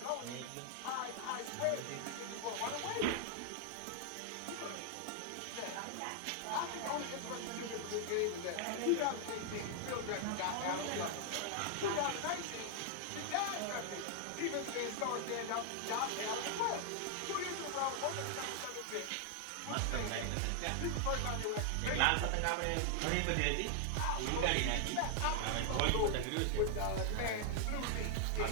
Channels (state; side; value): different; both; correlation 0.00